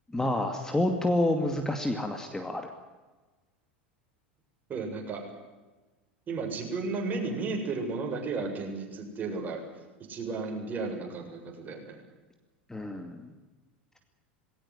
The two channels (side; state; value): both; normal; correlation 0.61